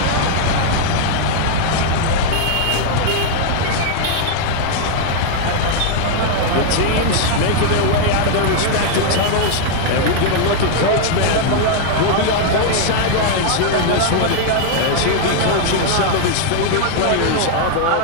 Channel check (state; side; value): different; both; correlation 0.00